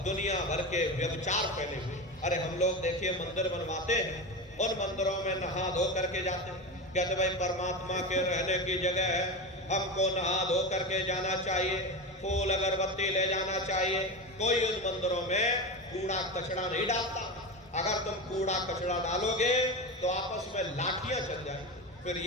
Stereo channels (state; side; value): normal; both; correlation 0.22